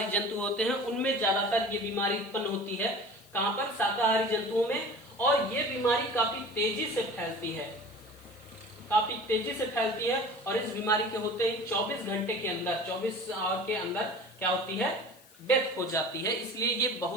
जंतु होते हैं, उनमें ज्यादातर ये बीमारी उत्पन्न होती है। कहां पर, शाकाहारी जंतुओं में। और ये बीमारी काफी तेजी से फैलती है, और इस बीमारी के होते ही 24 घंटे के अंदर, 24 आवर के अंदर क्या होती है, डेथ हो जाती है। इसलिए ये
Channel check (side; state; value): left; noise; hiss, 25 dB below the sound